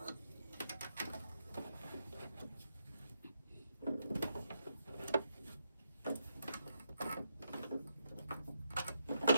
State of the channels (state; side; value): inverted; both; correlation -0.80